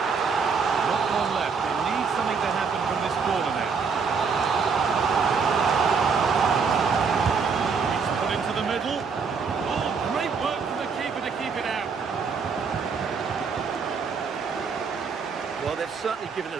Not one left. They need something to happen from this corner now. It's put into the middle. Oh, great work from the keeper to keep it out. Well, they've certainly given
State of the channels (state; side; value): quieter; left; 5.5 dB